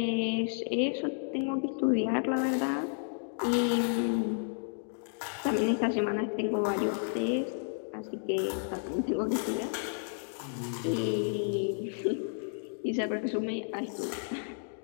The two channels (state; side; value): silent; right; digital silence